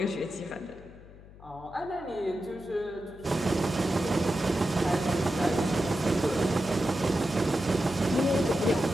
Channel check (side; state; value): left; noise; hum, 20 dB below the sound